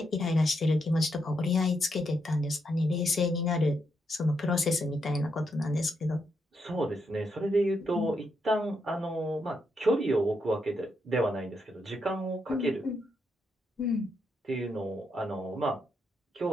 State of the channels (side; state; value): both; normal; correlation 0.80